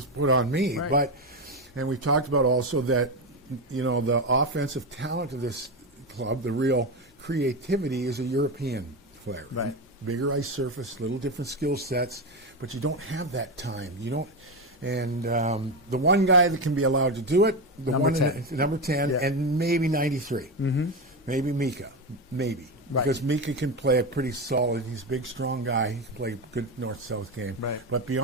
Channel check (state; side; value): normal; both; correlation 0.14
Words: put on me. Right. And we talked about also that, the offensive talent of this club, the real creativity is a European flair. Right. Bigger ice surface, little different skill sets, but you don't have that time. You don't. And the one guy that can be allowed to do it, number 10, and maybe 93. Maybe Mika, maybe. Right. Because Mika can play a pretty solid, he's a big, strong guy. He can play a good north-south game. Right. But